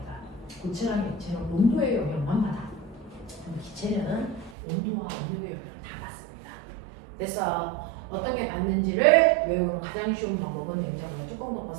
고체랑 액체는 온도의 영향만 받아. 기체는 온도와 온도의 영향을 다 받습니다. 그래서 어떤 게 받는지를 외우는 가장 쉬운 방법은 냉장고에 뚜껑 덮어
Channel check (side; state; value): left; drops out; at 4.5 s